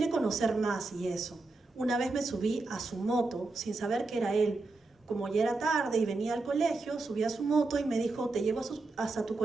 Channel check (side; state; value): left; quieter; 3.4 dB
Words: conocer más y eso. Una vez me subí a su moto sin saber que era él. Como ya era tarde y venía al colegio, subí a su moto y me dijo: ¿te llevo hasta tu